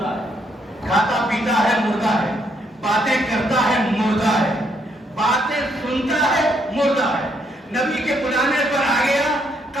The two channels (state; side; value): normal; both; correlation 0.73